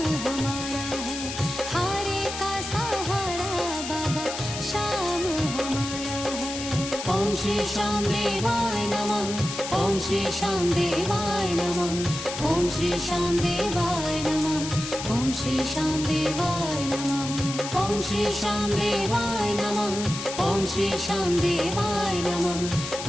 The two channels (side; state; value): left; noise; hiss, 7 dB below the sound